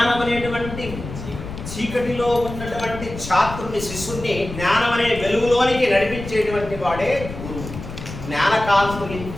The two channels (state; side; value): noise; left; rumble, 10 dB below the sound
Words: అనేటువంటి చీకటిలో ఉన్నటువంటి ఛాత్రుని శిష్యుని జ్ఞానం అనే వెలుగులోనికి నడిపించేటువంటి వాడే గురువు.